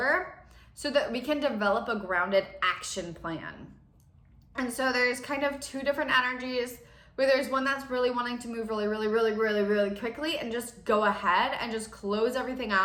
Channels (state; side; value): identical; both; correlation 1.00